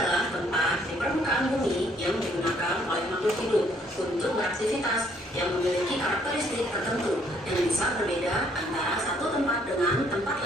tempat di permukaan bumi yang digunakan oleh makhluk hidup untuk beraktivitas yang memiliki karakteristik tertentu yang bisa berbeda antara satu tempat dengan tempat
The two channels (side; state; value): both; normal; correlation 0.66